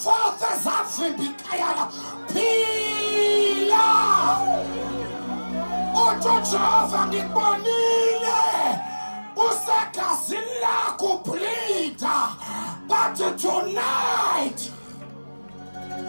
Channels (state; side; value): inverted; both; correlation -1.00